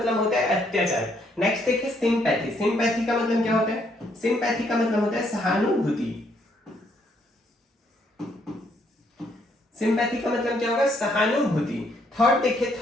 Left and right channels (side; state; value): both; normal; correlation 0.71